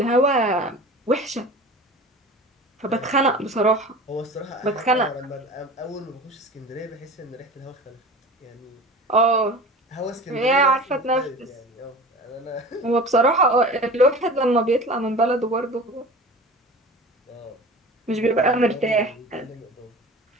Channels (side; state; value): both; normal; correlation 0.37